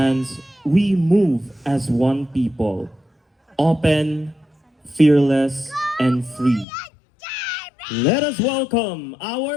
we move as one people, open, fearless, and free. Let us welcome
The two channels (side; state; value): right; drops out; at 6.7 s